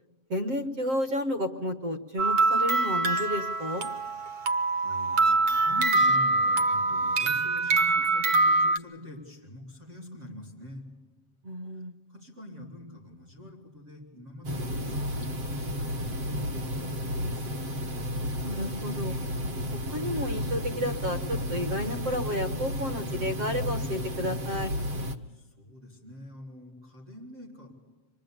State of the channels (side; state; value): left; late; 7.6 ms